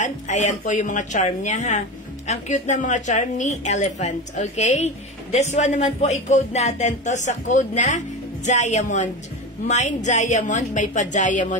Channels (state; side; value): normal; both; correlation 0.24